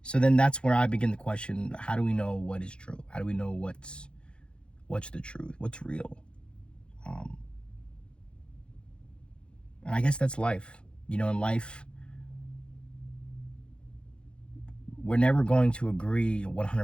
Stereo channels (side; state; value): right; late; 0.055 ms